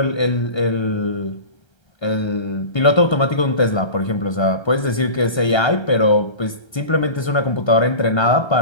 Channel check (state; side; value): late; right; 1.3 ms